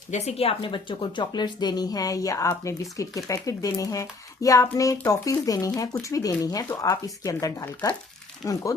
बच्चों को चॉकलेट्स देनी है, या आपने बिस्किट के पैकेट देने हैं, या आपने टॉफीज देनी है, कुछ भी देनी है, तो आप इसके अंदर डालकर उनको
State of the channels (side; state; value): right; quieter; 3.7 dB